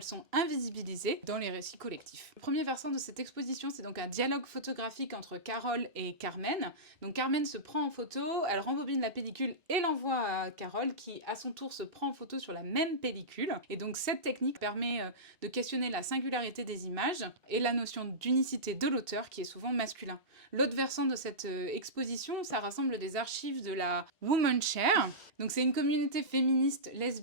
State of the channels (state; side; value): normal; both; correlation -0.17